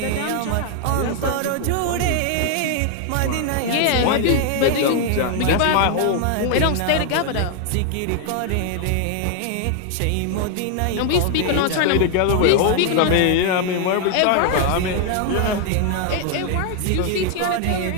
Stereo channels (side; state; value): both; different; correlation 0.00